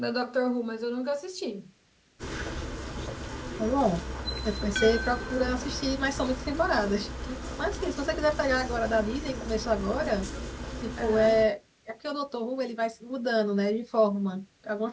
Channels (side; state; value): both; identical; correlation 1.00